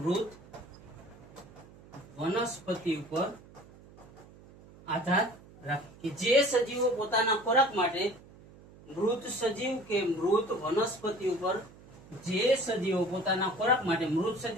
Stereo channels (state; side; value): noise; right; hum, 22 dB below the sound